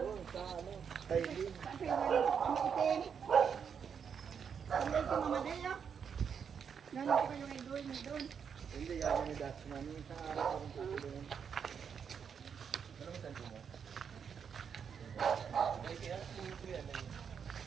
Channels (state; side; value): quieter; left; 7.0 dB